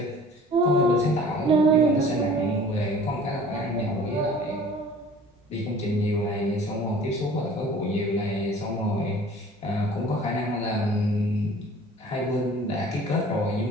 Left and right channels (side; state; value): both; normal; correlation 0.47